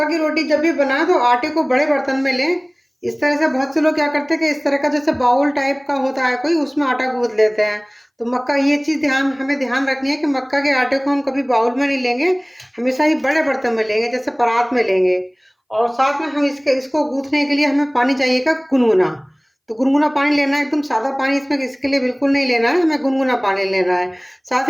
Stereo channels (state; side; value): identical; both; correlation 1.00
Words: की रोटी जब भी बनाए तो आटे को बड़े बर्तन में लें। इस तरह से बहुत से लोग क्या करते हैं कि इस तरह का जैसे बाउल टाइप का होता है कोई, उसमें आटा गूंथ लेते हैं। तो मक्का ये चीज़ हमें ध्यान रखनी है कि मक्का के आटे को हम कभी बाउल में नहीं लेंगे, हमेशा ही बड़े बर्तन में लेंगे जैसे परात में लेंगे। और साथ में हम इसको गूंथने के लिए हमें पानी चाहिएगा गुनगुना। तो गुनगुना पानी लेना है, एकदम सादा पानी इसमें इसके लिए बिल्कुल नहीं लेना है, हमें गुनगुना पानी लेना है। साथ